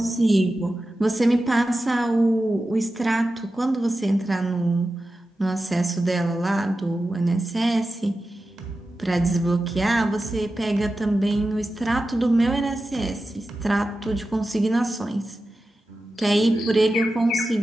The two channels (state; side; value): normal; both; correlation 0.93